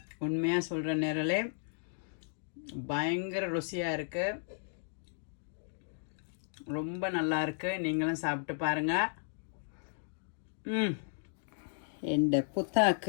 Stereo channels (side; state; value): right; silent; digital silence